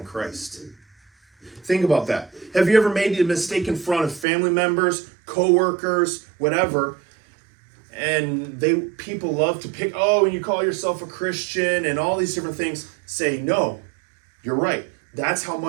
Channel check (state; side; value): drops out; left; at 4.2 s